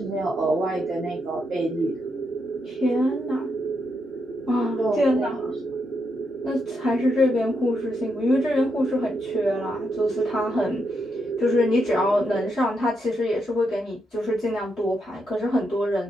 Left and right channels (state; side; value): normal; both; correlation 0.81